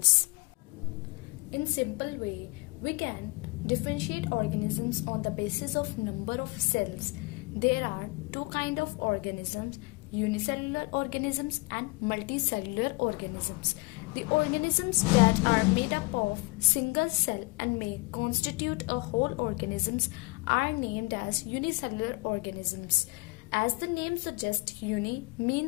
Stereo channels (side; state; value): right; quieter; 26.5 dB